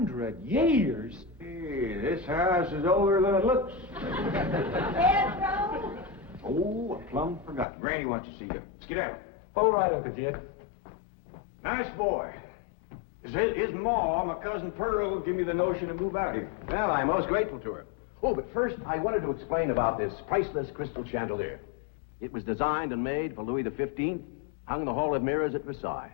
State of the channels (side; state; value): right; drops out; at 7.7 s